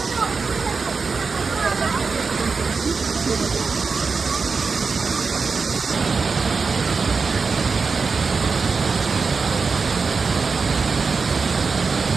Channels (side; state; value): left; quieter; 4.8 dB